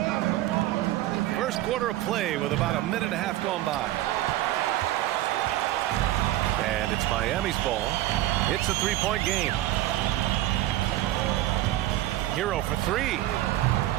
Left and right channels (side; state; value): left; quieter; 15.1 dB